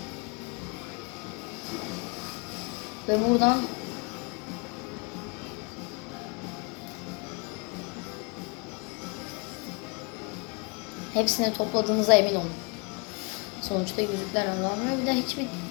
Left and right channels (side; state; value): right; quieter; 31.4 dB